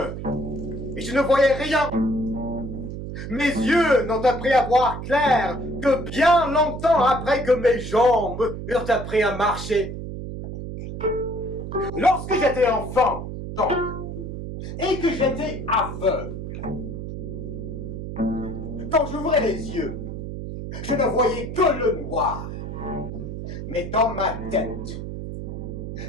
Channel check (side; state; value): right; noise; hum, 7 dB below the sound